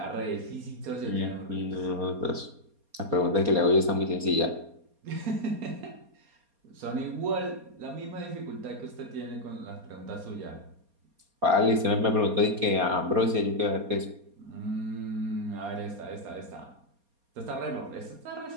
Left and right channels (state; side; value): late; left; 4.3 ms